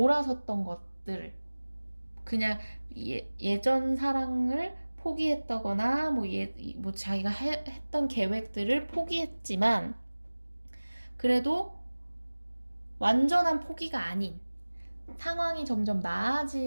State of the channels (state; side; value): inverted; both; correlation -1.00